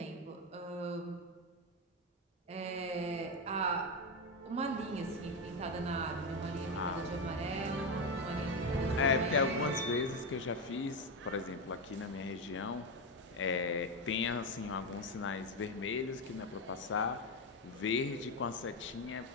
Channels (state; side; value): normal; both; correlation 0.11